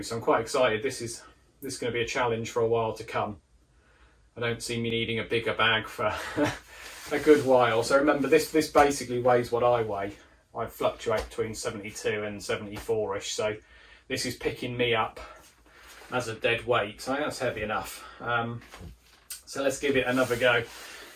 So I'm quite excited. This is going to be a challenge for a while to come. I don't see me needing a bigger bag for a good while. So remember, this basically weighs what I weigh. I fluctuate between 72 and 74ish, so this is picking me up as a dead weight. So I think that's heavy enough. So let's give it another go.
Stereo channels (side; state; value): both; identical; correlation 1.00